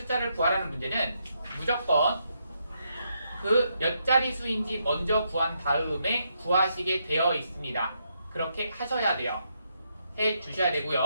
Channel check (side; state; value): both; inverted; correlation -0.78